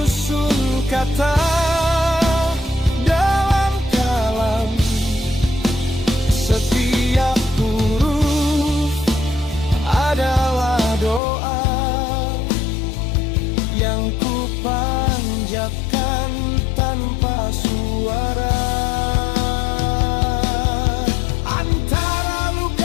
kata dalam kalam. Setiap huruf adalah doa yang ku panjatkan tanpa suara. Antara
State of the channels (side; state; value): right; drops out; at 11.2 s